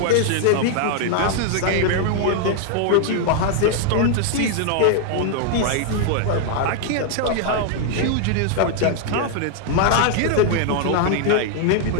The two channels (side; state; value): both; different; correlation 0.00